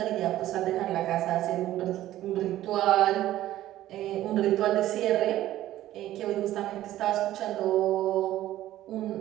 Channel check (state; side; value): quieter; left; 14.0 dB